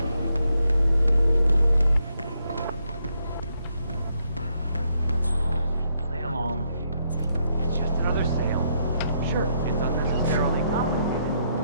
Play along. It's just another sale. Sure, it's unnecessarily complicated.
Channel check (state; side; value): inverted; both; correlation -0.76